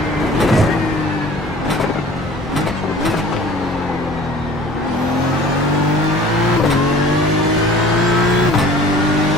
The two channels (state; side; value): normal; both; correlation 0.46